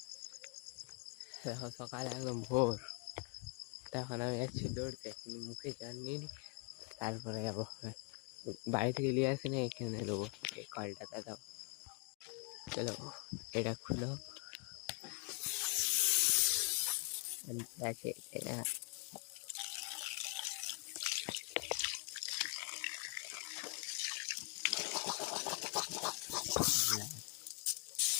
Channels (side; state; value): right; quieter; 33.4 dB